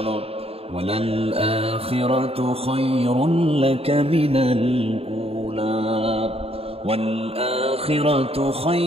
ওয়ালাল আখিরাতু খায়রুন লাকা মিনাল উলা ওয়াল আখিরাতু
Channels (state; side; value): late; left; 0.28 ms